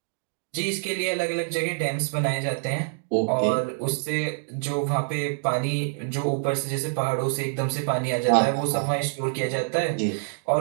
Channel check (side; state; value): left; silent; digital silence